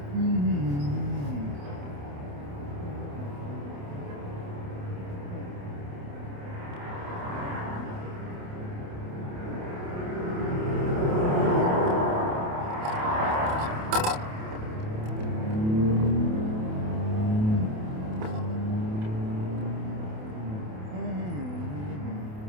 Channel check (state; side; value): late; left; 28 ms